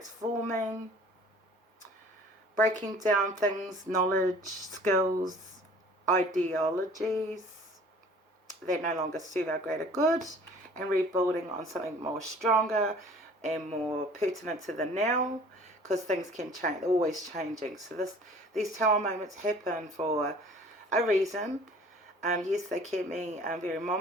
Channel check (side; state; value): both; normal; correlation 0.49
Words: breaking down things, knowledge, skills, ideologies that no longer serve our greater good, and rebuilding on something more stronger and more pertinent to the now, because things can change, they're always changing. So these Tower moments happen for a reason. Yes, they can be very